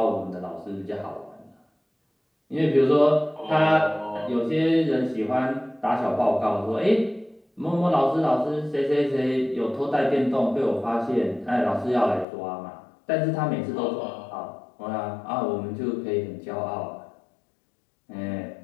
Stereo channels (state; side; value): drops out; right; at 12.2 s